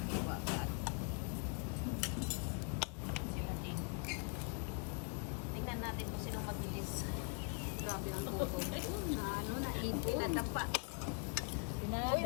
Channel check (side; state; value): right; quieter; 38.5 dB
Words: ka. Sila din. Tingnan natin kung sinong mabilis. Grabe ang gutom. Na ano, naipon. Pinadapa. Uy,